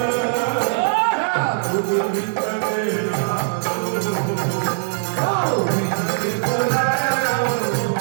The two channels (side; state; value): left; silent; digital silence